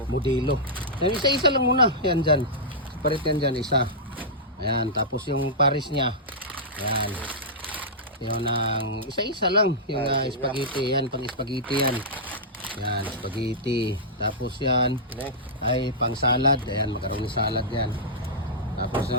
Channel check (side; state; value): both; normal; correlation -0.13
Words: modelo. Yan, isa-isa lang muna. Yan dyan. Separate yan dyan, isa. Ayan, tapos yung pares niya. Ayan. Yung ang isa-isa lang. Yung spaghetti. Yan, pang spaghetti yan. Yan, spaghetti. Tapos yan ay pang salad. Ayan, magkaroon ng salad yan. Tapos